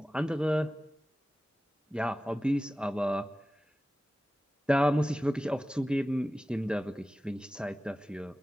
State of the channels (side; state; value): both; normal; correlation 0.96